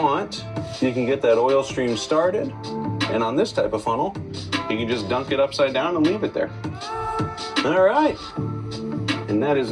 you can get that oil stream started. And on this type of funnel, you can just dunk it upside down and leave it there. All right. And that is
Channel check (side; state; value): both; identical; correlation 1.00